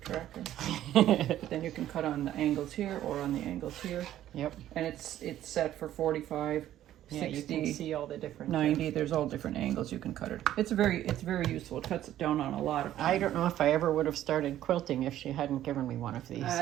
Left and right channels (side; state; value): left; quieter; 12.5 dB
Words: track. Then you can cut on the angles here or on the angles here. Yep. And it's set for 45, Yeah, you 60, can see all the different 90. There's all different angles you can cut it. It's very useful. It cuts it down on a lot of I don't know if I ever would have started quilting if she hadn't given me one of these.